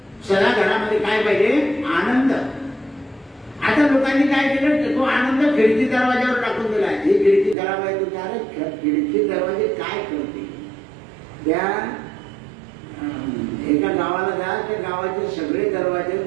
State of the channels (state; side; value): drops out; left; at 7.6 s